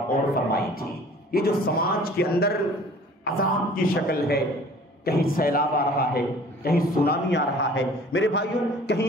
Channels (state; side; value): normal; both; correlation 0.49